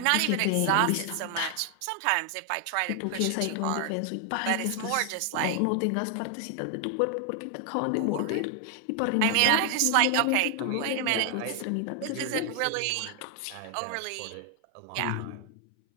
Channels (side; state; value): both; different; correlation 0.00